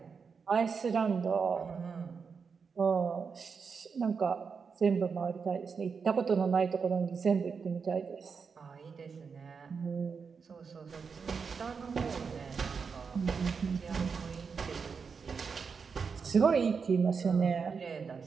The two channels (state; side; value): quieter; left; 5.6 dB